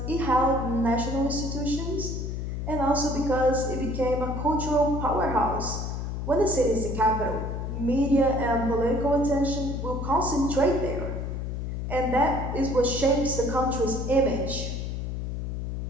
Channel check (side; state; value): left; noise; hum, 4 dB below the sound